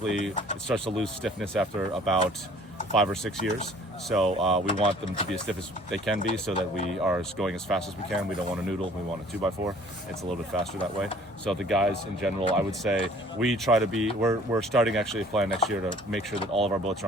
it starts to lose stiffness after about 5 or 6 years. So we want them to be as stiff as they can be so that we are going as fast as we can. We don't want a noodle, we want a 2x4. It's a little bit faster that way. So the guys in general, I would say we try to be, we're starting actually a plan next year to make sure that all of our boats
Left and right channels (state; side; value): normal; both; correlation 0.53